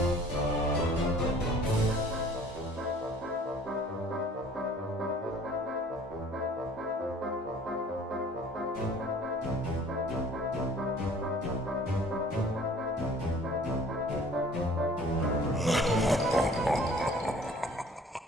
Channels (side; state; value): both; normal; correlation 0.51